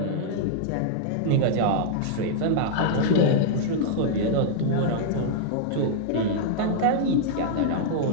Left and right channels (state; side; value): different; both; correlation -0.01